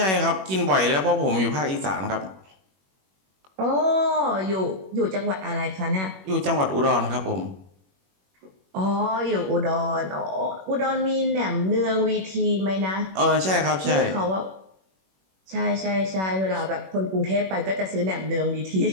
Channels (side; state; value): left; late; 21 ms